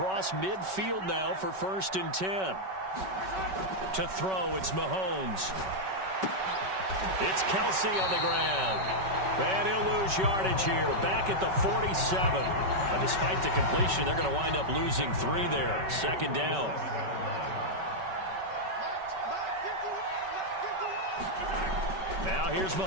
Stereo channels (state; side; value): late; left; 5.3 ms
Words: midfield now for 1st and 10. To throw, it's Mahomes. It's Kelsey on the ground. And he'll lose yardage here. Back at the 47. But despite the completion, they're going to wind up losing 3 there. 2nd down. Now here's